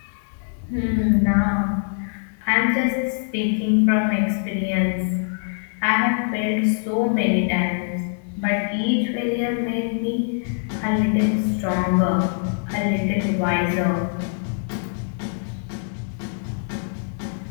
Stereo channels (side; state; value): right; silent; 61 dB below the other